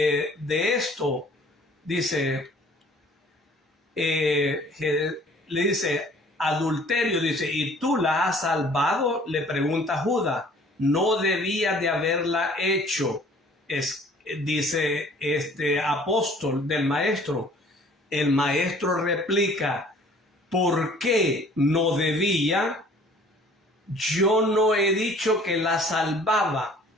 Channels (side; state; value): both; normal; correlation 0.53